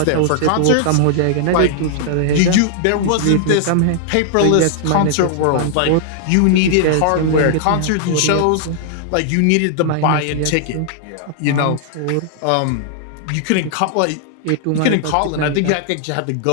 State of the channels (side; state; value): both; different; correlation -0.01